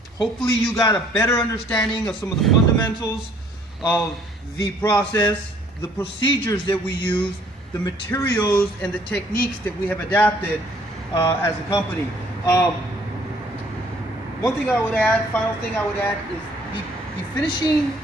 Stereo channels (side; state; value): both; normal; correlation 0.60